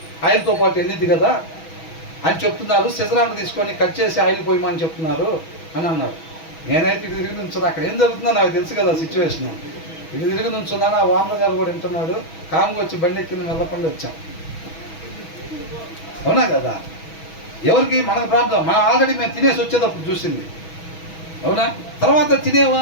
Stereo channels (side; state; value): right; late; 6.2 ms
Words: ఆయిల్తో పాటు వెళ్ళిద్ది కదా అని చెప్తున్నారు. సిజరాన్ని తీసుకొని కట్ చేసి ఆయిల్ పోయమని చెప్తున్నారు అని అన్నాడు. నేనైతే ఇటు తిరిగి నుంచున్నా. అక్కడ ఏం జరుగుతుందో నాకు తెలుసు కదా సిచ్యువేషన్. ఇటు తిరిగి నుంచున్నాను. ఆ వానర్ గారు కూడా వింటున్నాడు. కామ్గా వచ్చి బండి ఎక్కింది, వెళ్ళకుండా వచ్చాం. అవునా కదా? ఎవరికి మనకు ప్రాబ్లం, మనం ఆల్రెడీ మేము తినేసి వచ్చేటప్పుడు చూసింది. అవునా? తర్వాత తినే